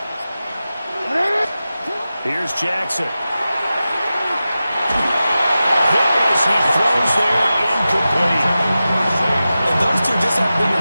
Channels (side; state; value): both; inverted; correlation -0.94